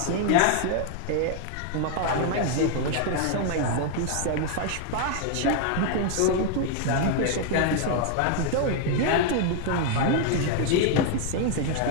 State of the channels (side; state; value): both; different; correlation 0.00